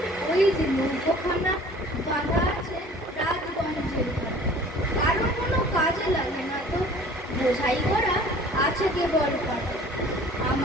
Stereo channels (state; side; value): normal; both; correlation 0.48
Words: ওই যে নৌকোখানা বাঁধা আছে রাজগঞ্জের ঘাটে, কারো কোনো কাজে লাগে না তো, বোঝাই করা আছে কেবল পাটে।